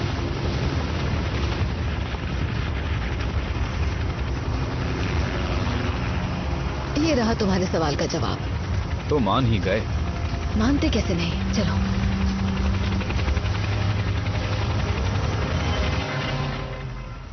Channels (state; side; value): identical; both; correlation 1.00